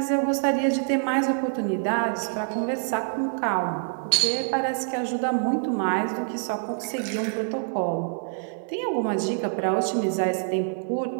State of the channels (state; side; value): silent; left; digital silence